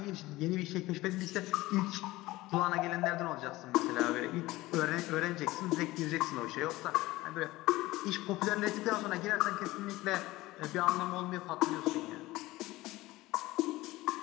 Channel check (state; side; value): quieter; right; 18.7 dB